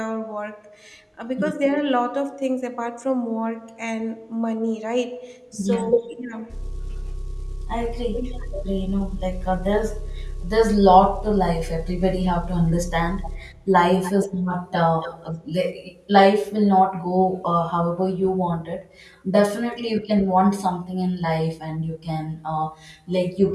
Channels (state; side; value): identical; both; correlation 1.00